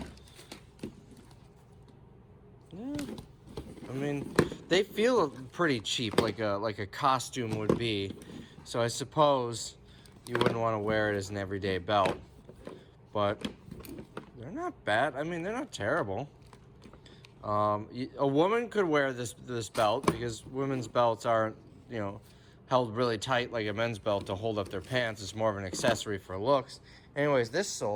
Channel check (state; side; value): identical; both; correlation 1.00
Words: Yeah, I mean, they feel pretty cheap, like a costume would be. So I suppose you wouldn't want to wear it as an everyday belt. But they're not bad. I mean, they're not terrible. A woman could wear this belt because women's belts aren't, you know, held really tight like a men's belt to hold up their pants. It's more of an accessory for looks. Anyways, this